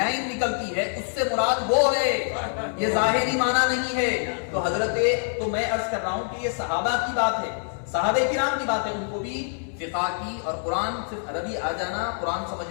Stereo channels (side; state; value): right; silent; digital silence